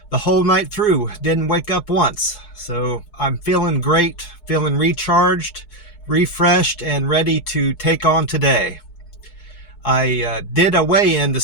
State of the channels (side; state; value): right; late; 4.7 ms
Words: the whole night through didn't wake up once. So I'm feeling great, feeling recharged, refreshed, and ready to take on today. I did a weigh-in